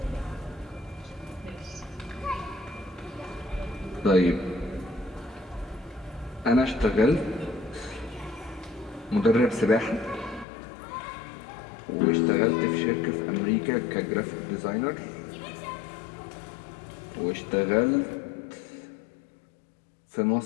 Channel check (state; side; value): drops out; right; at 10.5 s